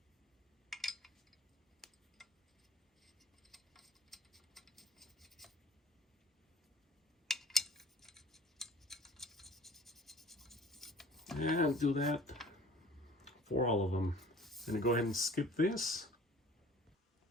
And do that for all of them. I'm gonna go ahead and skip this.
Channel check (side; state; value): both; normal; correlation 0.48